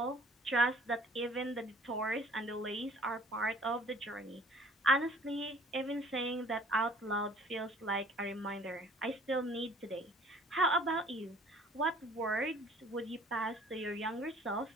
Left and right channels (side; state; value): both; normal; correlation 0.54